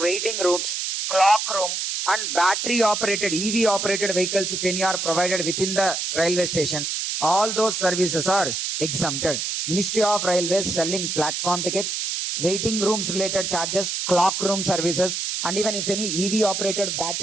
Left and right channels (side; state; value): right; noise; hiss, 2 dB below the sound